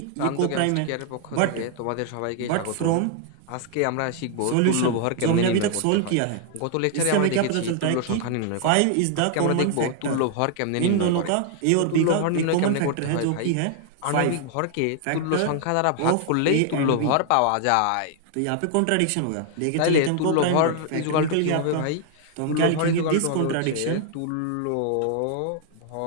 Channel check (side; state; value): both; different; correlation 0.00